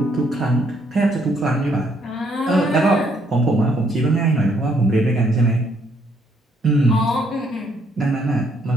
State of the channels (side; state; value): both; normal; correlation 0.69